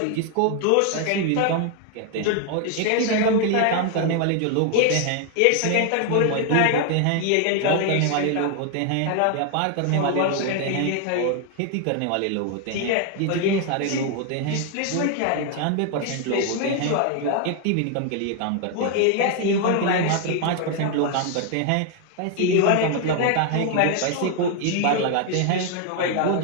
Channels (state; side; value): different; both; correlation 0.01